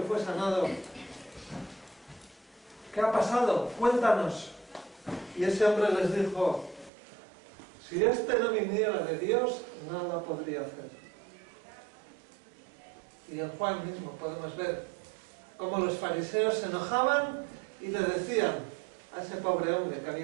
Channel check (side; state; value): left; drops out; at 6.9 s